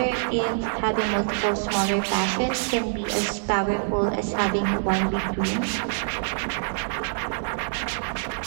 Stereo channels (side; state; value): left; silent; digital silence